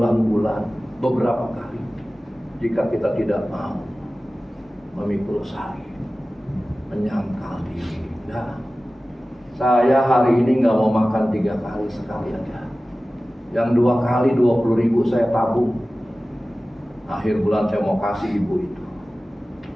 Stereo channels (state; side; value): normal; both; correlation 0.96